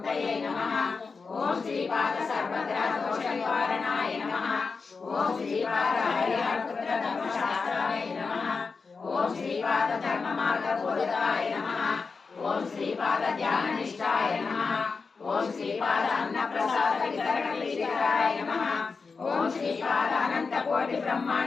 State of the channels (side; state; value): right; quieter; 4.7 dB